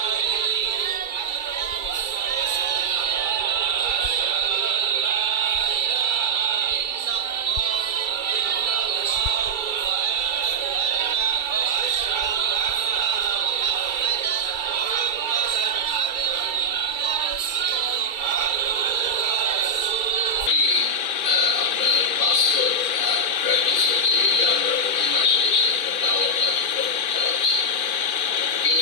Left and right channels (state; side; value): late; right; 2.3 ms